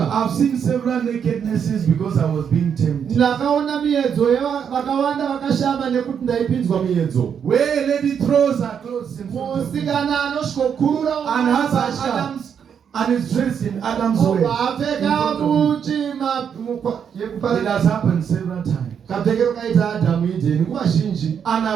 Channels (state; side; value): quieter; left; 7.7 dB